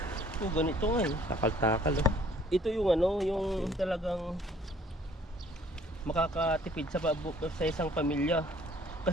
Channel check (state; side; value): normal; both; correlation 0.58